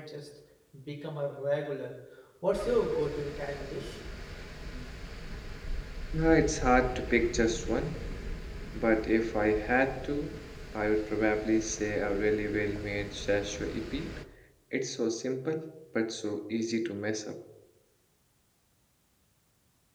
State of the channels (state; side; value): identical; both; correlation 1.00